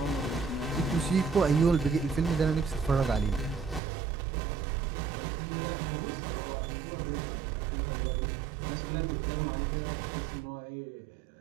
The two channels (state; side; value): drops out; left; at 3.8 s